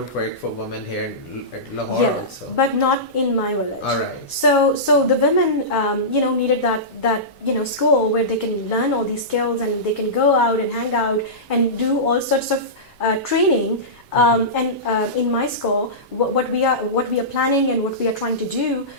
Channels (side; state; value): both; normal; correlation -0.18